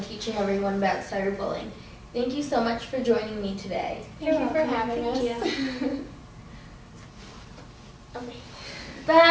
teaching everyone about cyberbullying. Thank you so much for joining me today. Thank you for having us. Okay.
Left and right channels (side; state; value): both; identical; correlation 1.00